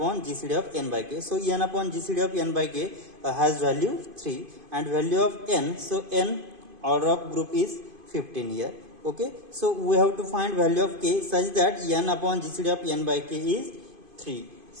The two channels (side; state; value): left; late; 2.5 ms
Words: GCD of n by K. So n upon GCD of n by K has value 3 and value of n. So n order of group is 15 here. Okay, so we have to find value of K such that n upon GCD of n by K is 3.